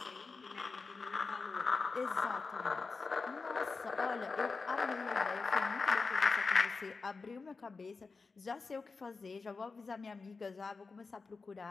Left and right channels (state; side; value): quieter; right; 4.4 dB